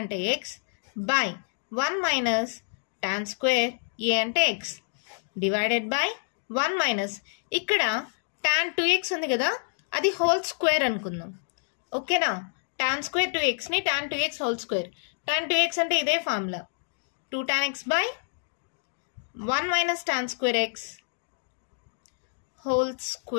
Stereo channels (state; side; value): silent; right; digital silence